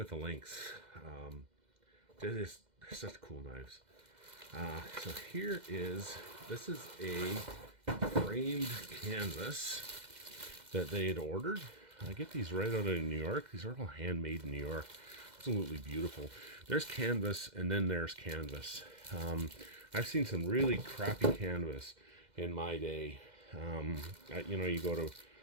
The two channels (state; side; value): late; left; 2.1 ms